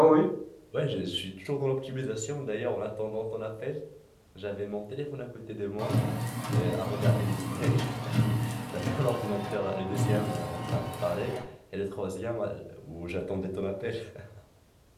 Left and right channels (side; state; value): both; identical; correlation 1.00